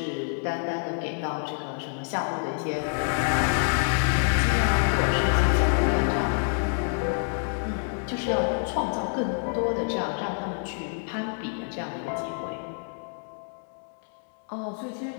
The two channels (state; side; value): silent; right; 58 dB below the other